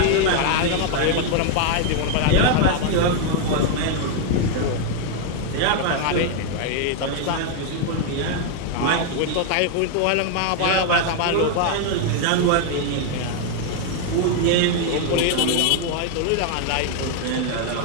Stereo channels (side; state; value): both; different; correlation 0.01